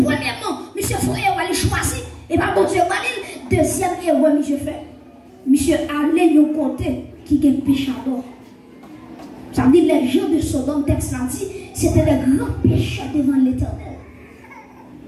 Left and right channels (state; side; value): identical; both; correlation 1.00